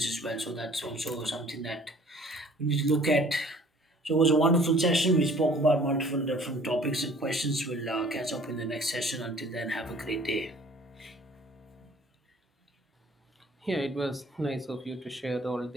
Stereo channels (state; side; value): normal; both; correlation 0.53